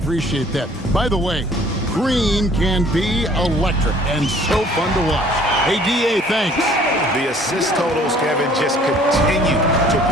that. By the way, Green can be electric and so fun to watch. Hey, D.A., thanks. The assist totals, Kevin, just continue to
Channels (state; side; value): normal; both; correlation 0.55